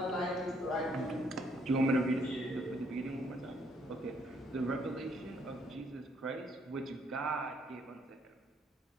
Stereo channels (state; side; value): normal; both; correlation 0.68